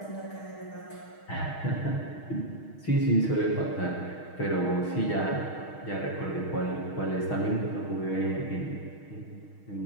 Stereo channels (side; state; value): right; late; 6.4 ms